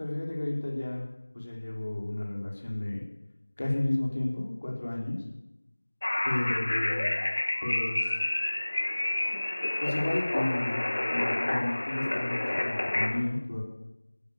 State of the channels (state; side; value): inverted; both; correlation -1.00